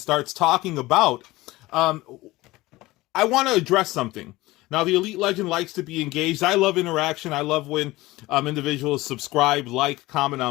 talking about, I want to address something. Now, the Elite Legend likes to be engaged. I love interaction. I love when individuals subscribe, like, comment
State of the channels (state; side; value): quieter; right; 19.2 dB